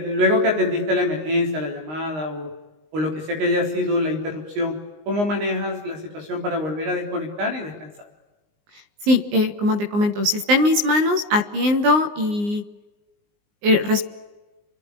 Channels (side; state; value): left; late; 19 ms